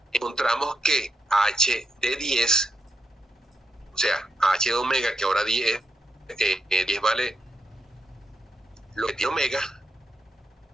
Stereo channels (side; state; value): both; normal; correlation 0.83